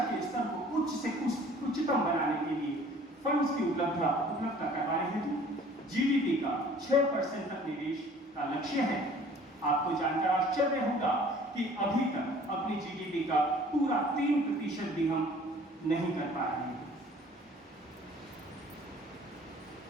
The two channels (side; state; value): both; normal; correlation 0.52